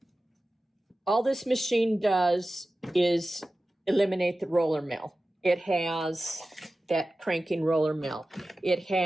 all this machine does is eliminate the roller mill. It has that cranking roller mill. It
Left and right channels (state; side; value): normal; both; correlation 0.95